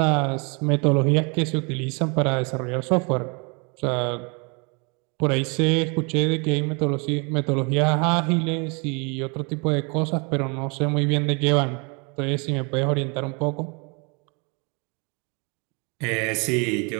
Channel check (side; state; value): left; quieter; 32.7 dB